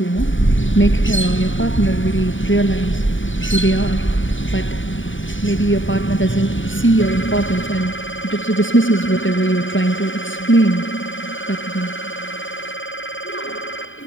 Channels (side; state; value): right; late; 0.56 ms